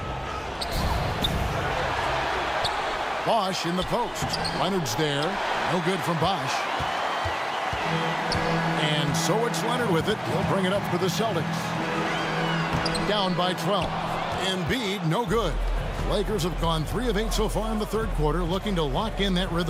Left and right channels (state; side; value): identical; both; correlation 1.00